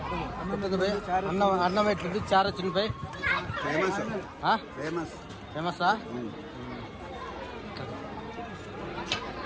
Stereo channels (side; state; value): both; identical; correlation 1.00